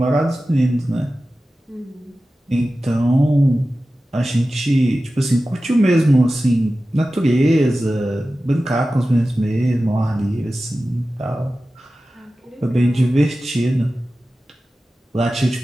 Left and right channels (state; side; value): normal; both; correlation 0.95